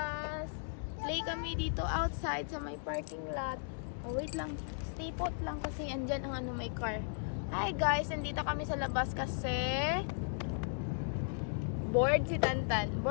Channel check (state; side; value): silent; right; digital silence